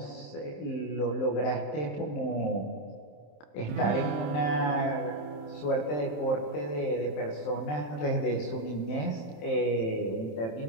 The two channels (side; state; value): right; late; 27 ms